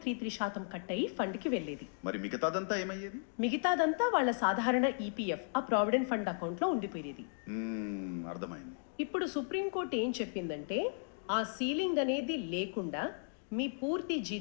కట్ అయ్యి ఫండ్కి వెళ్ళేది. మరి మిగతాదంతా ఏమయ్యేది? మిగతాదంతా వాళ్ళ సాధారణ ఈపీఎఫ్ ఆ ప్రావిడెంట్ ఫండ్ అకౌంట్లో ఉండిపోయేది. అర్థమైంది. ఇప్పుడు సుప్రీంకోర్టు ఏం చెప్పిందంటే ఆ సీలింగ్ అనేది లేకుండా మీ పూర్తి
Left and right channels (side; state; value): right; silent; digital silence